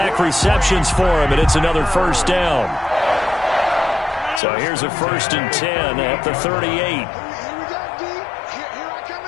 receptions for him, and it's another first down. So here's a 1st and 10 at the 38.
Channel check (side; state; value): right; drops out; at 4.4 s